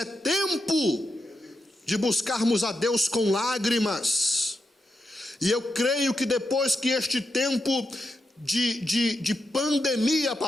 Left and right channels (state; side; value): normal; both; correlation 0.85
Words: tempo de buscarmos a Deus com lágrimas. E eu creio que depois que este tempo de pandemia